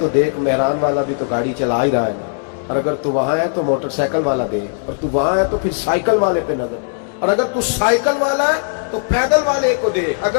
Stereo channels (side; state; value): right; silent; digital silence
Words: دیکھ مہران والا بھی تو گاڑی چلا ہی رہا ہے نا. اور اگر تو وہاں ہے تو موٹر سائیکل والا دیکھ. اور تو وہاں ہے تو پھر سائیکل والے پہ نظر. اور اگر تو سائیکل والا ہے تو پیدل والے کو دیکھ.